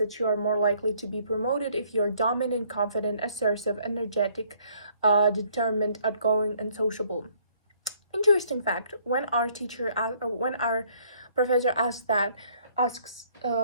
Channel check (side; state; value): both; inverted; correlation -0.64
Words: you are more likely to be promoted if you are dominant, confident, assertive, energetic, determined, outgoing, and sociable. Interesting fact: when our professor asks,